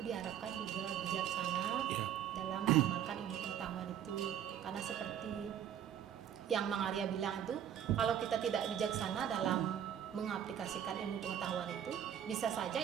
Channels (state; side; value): quieter; left; 9.6 dB